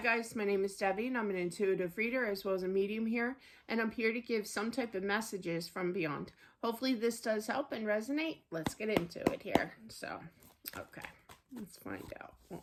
my name is Debbie and I'm an intuitive reader as well as a medium here, and I'm here to give some type of messages from beyond. Hopefully this does help and resonate. Let's get into it here. So, okay, let's find out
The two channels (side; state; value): both; identical; correlation 1.00